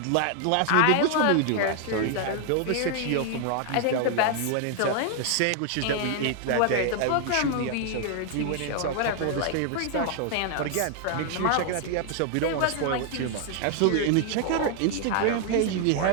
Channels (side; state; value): both; different; correlation 0.00